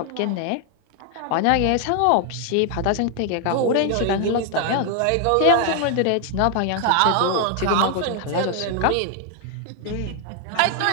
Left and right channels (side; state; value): both; different; correlation 0.00